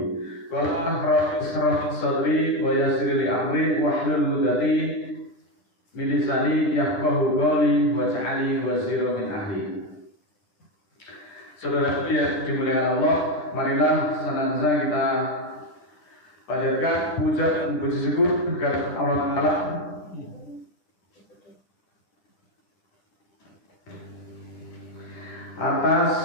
Wala rabbi sadri wa yassir li amri wahlul 'uqdatam min lisani yafqahu qawli waj'alni waziran min ahli. Saudara yang dimuliakan Allah, marilah senantiasa kita panjatkan puja dan puji syukur kepada Allah Ta'ala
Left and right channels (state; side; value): late; right; 10 ms